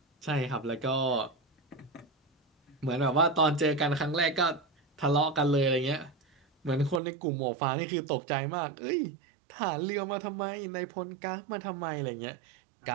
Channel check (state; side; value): drops out; left; at 7.0 s